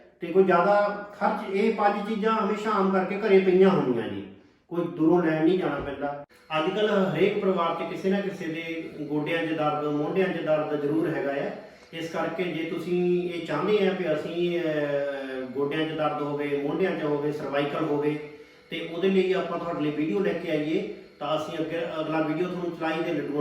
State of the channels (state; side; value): identical; both; correlation 1.00